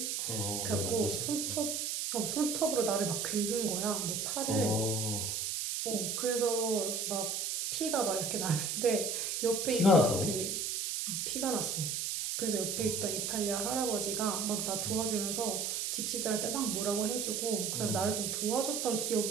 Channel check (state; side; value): noise; right; hiss, 1 dB below the sound